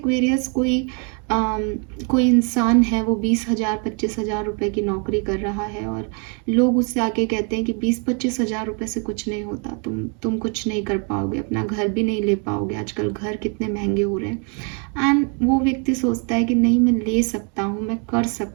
कोई कोई इंसान है वो 20,000 25,000 रुपए की नौकरी कर रहा है और लोग उससे आके कहते हैं कि 20-25,000 रुपए से कुछ नहीं होता, तुम कुछ नहीं कर पाओगे, अपना घर भी नहीं ले पाओगे, आजकल घर कितने महंगे हो रहे हैं। एंड वो व्यक्ति सोचता है कि नहीं, मैं ले सकता हूँ, मैं कर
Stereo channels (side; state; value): left; quieter; 37.3 dB